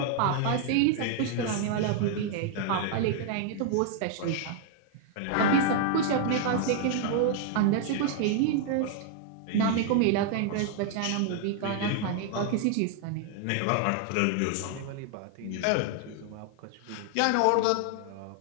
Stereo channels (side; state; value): both; different; correlation 0.00